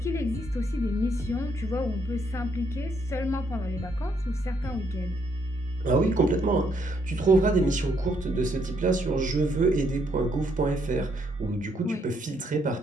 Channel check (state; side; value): normal; both; correlation 0.72